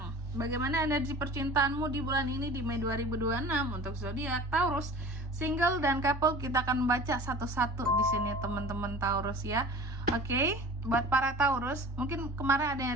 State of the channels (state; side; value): normal; both; correlation 0.41